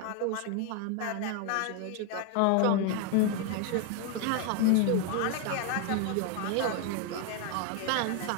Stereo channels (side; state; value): both; different; correlation 0.01